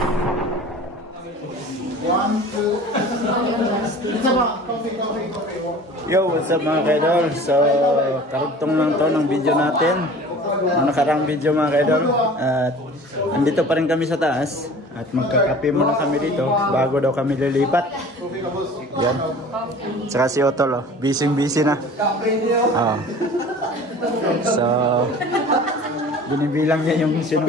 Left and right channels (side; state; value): both; normal; correlation 0.43